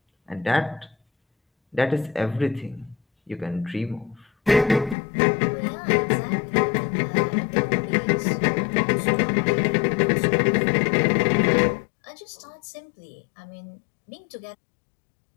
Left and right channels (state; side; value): drops out; right; at 5.0 s